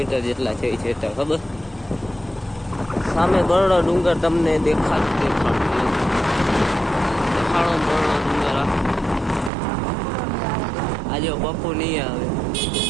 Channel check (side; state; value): left; drops out; at 9.5 s